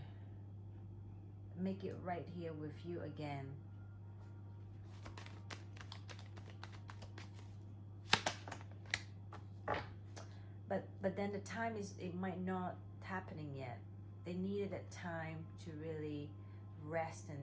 make it right here with you again. But then the time is, it might not happening yet. They needed that time to really rest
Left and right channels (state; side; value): identical; both; correlation 1.00